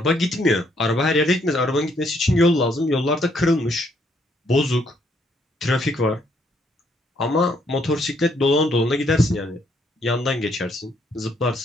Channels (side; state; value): both; normal; correlation 0.71